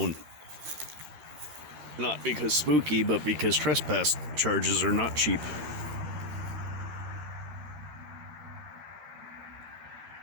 Not because spooky, but because trespass charges are not cheap.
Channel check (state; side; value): late; left; 12 ms